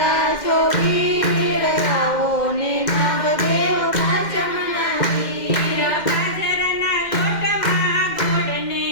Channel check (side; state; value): right; late; 2.1 ms